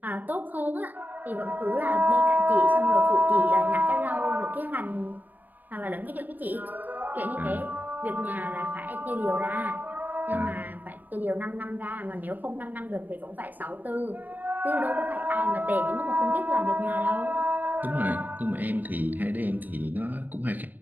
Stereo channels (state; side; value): late; left; 0.086 ms